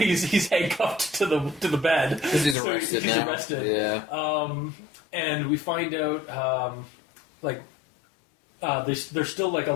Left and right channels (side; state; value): right; drops out; at 2.6 s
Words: handcuffed to the bed because he's arrested. He's arrested. Yeah. And we find out there's still like a